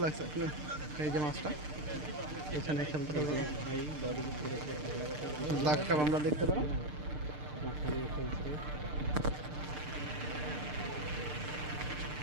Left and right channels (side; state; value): left; late; 6.7 ms